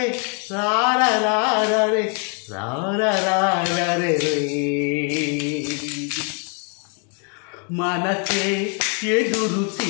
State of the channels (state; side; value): quieter; right; 36.5 dB